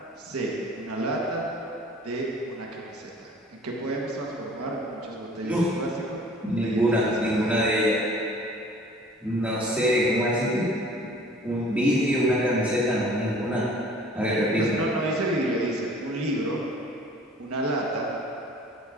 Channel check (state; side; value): normal; both; correlation 0.50